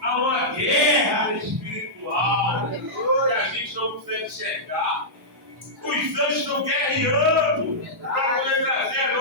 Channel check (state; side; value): normal; both; correlation -0.12